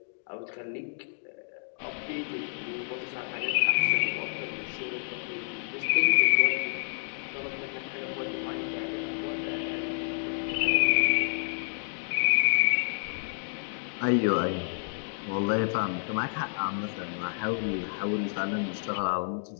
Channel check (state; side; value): silent; right; digital silence